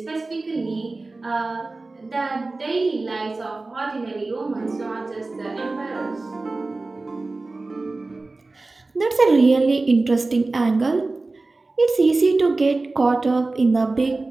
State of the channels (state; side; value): quieter; left; 3.3 dB